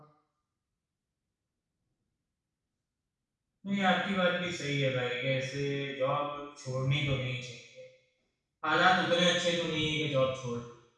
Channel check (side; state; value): both; identical; correlation 1.00